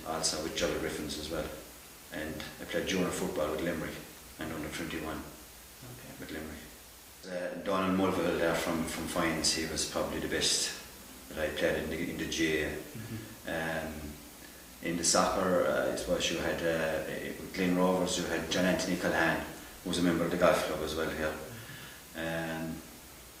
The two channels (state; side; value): identical; both; correlation 1.00